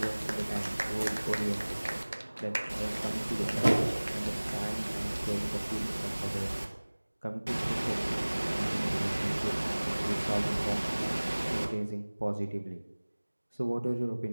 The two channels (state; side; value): inverted; both; correlation -1.00